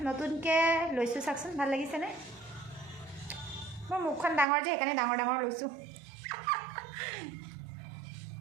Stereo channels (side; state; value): left; drops out; at 4.5 s